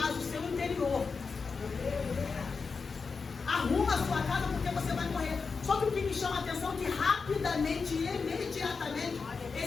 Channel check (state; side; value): quieter; right; 4.9 dB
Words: o seu interior. Arruma a sua casa porque você vai morrer. Só que o que me chama a atenção é que rapidamente e imediatamente